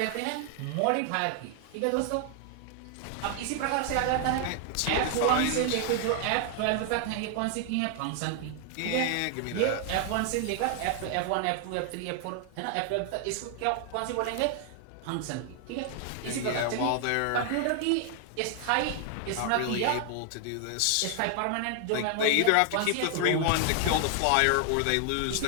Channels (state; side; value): different; both; correlation 0.00